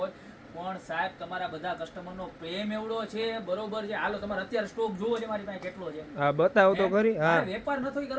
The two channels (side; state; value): both; identical; correlation 1.00